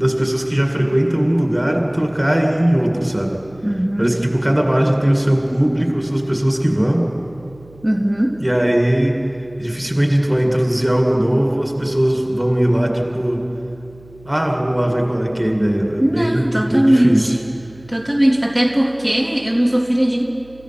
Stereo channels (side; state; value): right; noise; hum, 25 dB below the sound